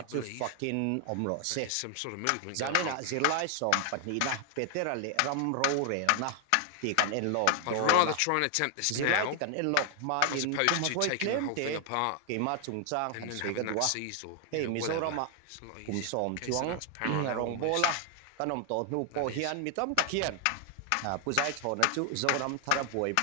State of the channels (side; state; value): both; different; correlation 0.00